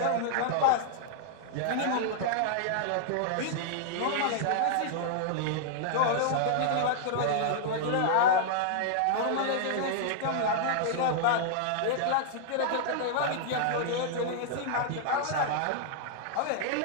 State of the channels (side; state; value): both; different; correlation -0.01